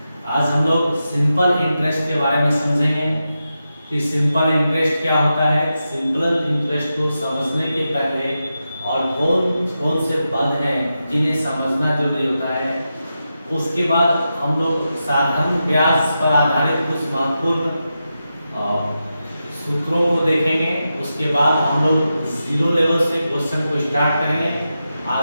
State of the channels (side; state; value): both; inverted; correlation -0.89